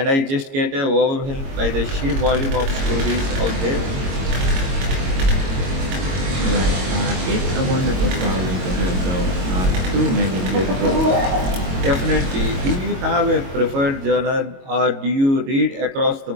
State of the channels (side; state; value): left; late; 22 ms